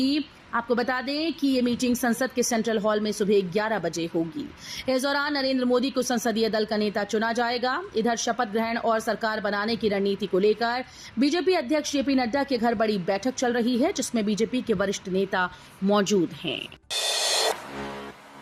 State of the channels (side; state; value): both; identical; correlation 1.00